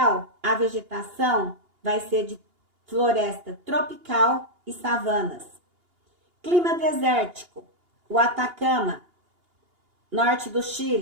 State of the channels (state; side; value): late; left; 2.8 ms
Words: a vegetação vai ser de floresta tropical e savanas. Clima desértico, o Atacama, norte do